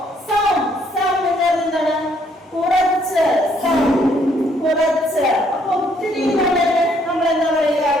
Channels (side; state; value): both; normal; correlation 0.68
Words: some. Some എന്താണ്? കുറച്ച്. Some. കുറച്ച്. അപ്പൊ ഒത്തിരി നമ്മൾ എന്താ പറയുക?